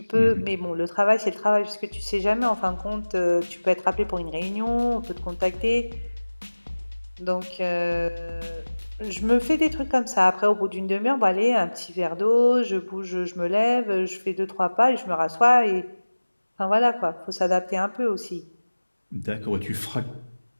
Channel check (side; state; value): both; inverted; correlation -1.00